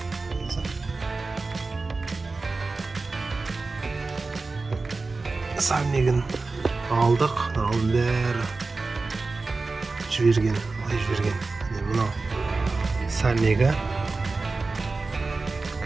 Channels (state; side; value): quieter; left; 3.8 dB